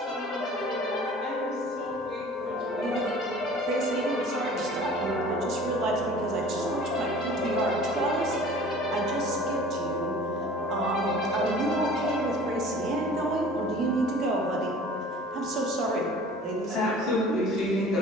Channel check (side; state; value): both; normal; correlation 0.45